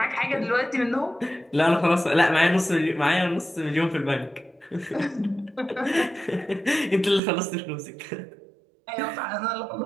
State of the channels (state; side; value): drops out; left; at 7.2 s